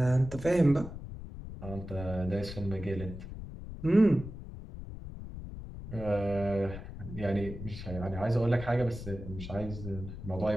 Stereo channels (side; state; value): left; noise; rumble, 10 dB below the sound